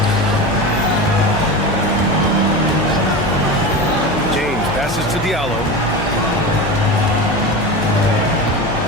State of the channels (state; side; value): noise; left; hum, 15 dB below the sound